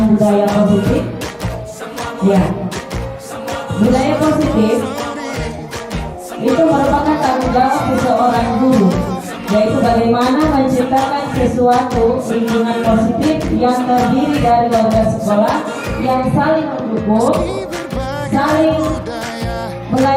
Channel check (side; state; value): both; identical; correlation 1.00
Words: budaya positif. Ya, budaya positif itu merupakan tanggung jawab seseorang guru, yaitu bagaimana menciptakan sesuatu lingkungan positif yang terdiri dari warga sekolah yang saling mendukung, saling